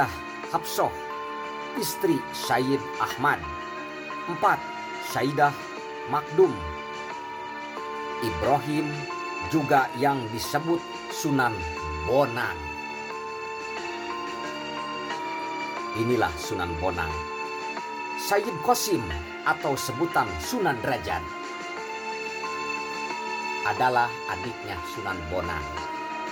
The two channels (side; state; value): both; identical; correlation 1.00